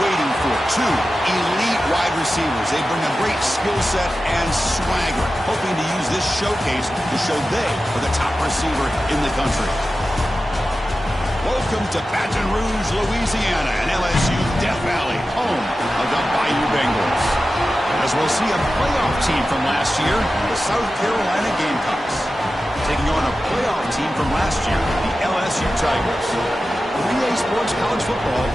waiting for. Two elite wide receivers. They bring a great skill set and swagger, hoping to use this showcase to show they are the top receiver in the country. Welcome to Baton Rouge, Louisiana, and LSU Death Valley, home of the Bayou Bengals. As we'll see a playoff team from last year, the South Carolina Gamecocks, taking on a playoff team from last year, the LSU Tigers. With EA Sports College Football,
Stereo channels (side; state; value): both; normal; correlation 0.93